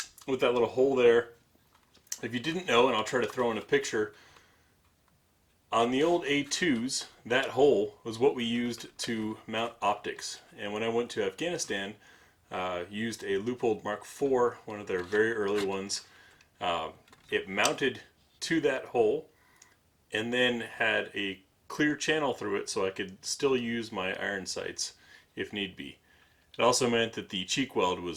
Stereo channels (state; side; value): identical; both; correlation 1.00